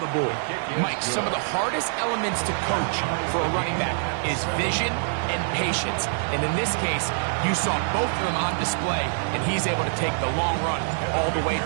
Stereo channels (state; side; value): silent; left; digital silence